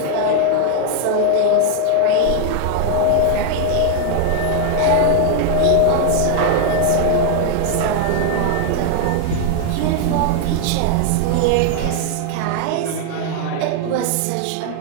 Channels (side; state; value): both; different; correlation 0.00